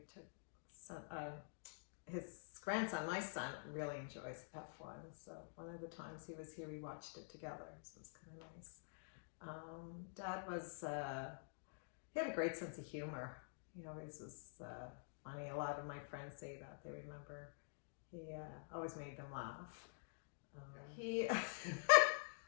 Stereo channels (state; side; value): silent; right; digital silence